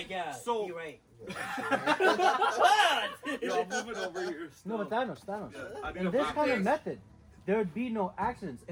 So You're right. yo, I'm moving over here. No, but Thanos. I need In a this back kind of fix. method, there would be no accidents.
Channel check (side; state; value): both; identical; correlation 1.00